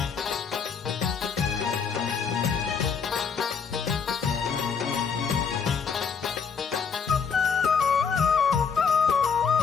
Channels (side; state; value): right; quieter; 6.1 dB